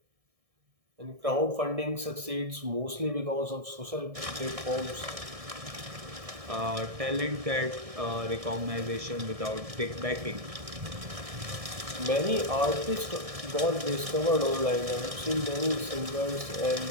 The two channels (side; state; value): left; late; 1.6 ms